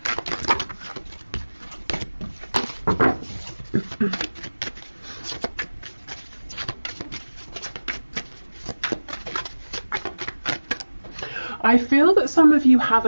I feel that some of you have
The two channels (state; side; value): inverted; both; correlation -1.00